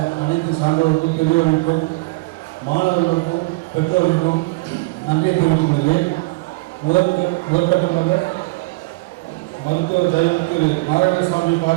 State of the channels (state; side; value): quieter; left; 25.0 dB